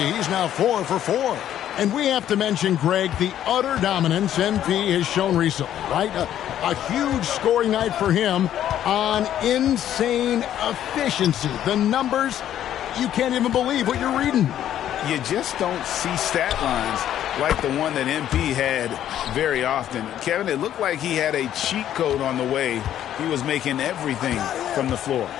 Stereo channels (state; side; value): quieter; right; 11.2 dB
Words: He's now 4 for 4. And we have to mention, Greg, the utter dominance MP has shown recently, right? A huge scoring night for him on insane efficiency. The numbers, you can't even believe what you're reading. You just don't see stat lines like the one that MP had very often. Kevin, it looked like he had a cheat code on the way. He was making everything from the floor.